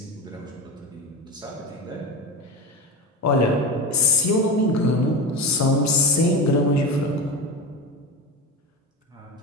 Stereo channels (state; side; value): normal; both; correlation 0.23